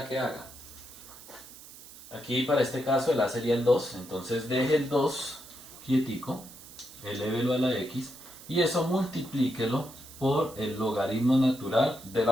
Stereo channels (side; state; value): right; noise; hiss, 18 dB below the sound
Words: que haga? Aquí para este caso el a sería el 2, entonces deje el 2 quietico, elévelo a la x y eso multiplíquelo por el logaritmo natural de